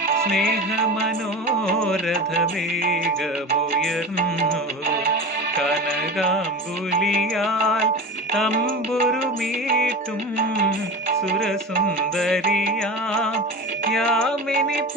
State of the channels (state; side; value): normal; both; correlation 0.29